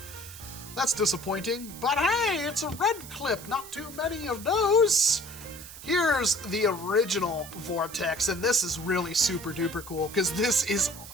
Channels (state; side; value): noise; right; hiss, 15 dB below the sound